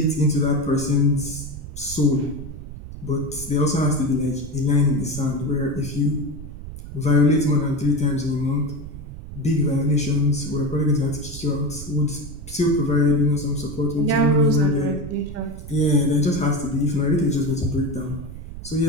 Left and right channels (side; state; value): right; noise; rumble, 11 dB below the sound